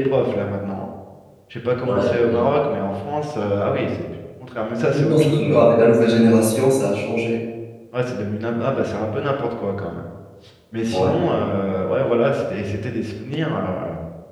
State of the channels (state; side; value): identical; both; correlation 1.00